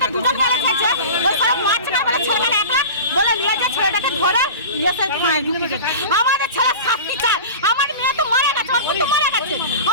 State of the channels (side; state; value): both; inverted; correlation -0.33